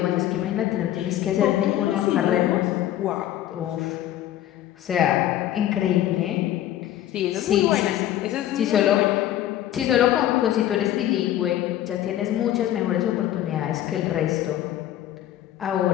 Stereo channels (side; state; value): right; quieter; 12.6 dB